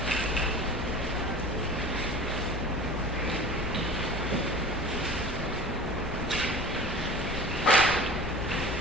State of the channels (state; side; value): normal; both; correlation 0.39